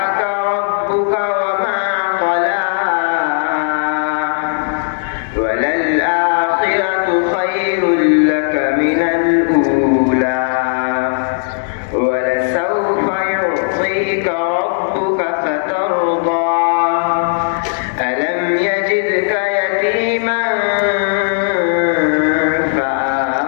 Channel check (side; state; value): right; silent; digital silence